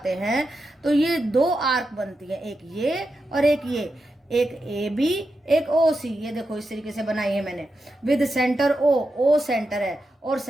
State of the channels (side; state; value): both; normal; correlation 0.88